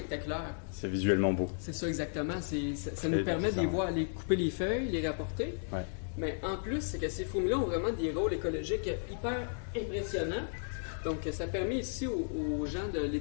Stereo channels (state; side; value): silent; right; digital silence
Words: C'est visuellement beau. C'est ça exactement. Ça nous permet de les voir, aller couper les feuilles, les rapporter. Ouais. Mais en plus, c'est que ces fourmis-là ont vraiment des rôles écologiques hyper impressionnants. Donc, ça permet ici aux gens de